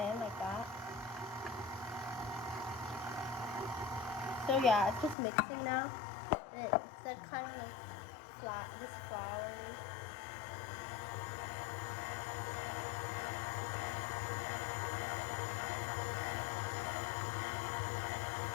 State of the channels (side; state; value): right; drops out; at 5.2 s